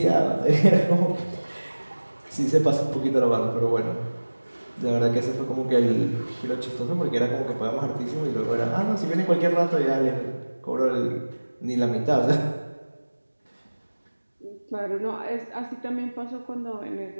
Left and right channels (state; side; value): inverted; both; correlation -1.00